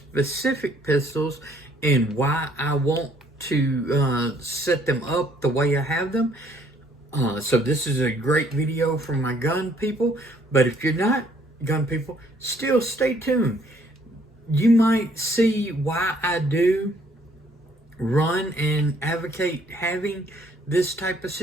pistols and why I want to set them up the way I have them. So this is a great video for my gun people, but if you're not gun people, still stay tuned. You might see why I do run and advocate having this type of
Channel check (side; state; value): both; normal; correlation 0.64